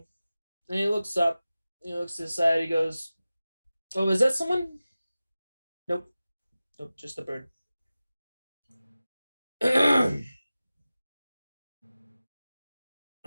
and he looks up, he looks to the side, he goes, "Oh, is that someone?" Nope. Nope, just a bird.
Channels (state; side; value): inverted; both; correlation -0.96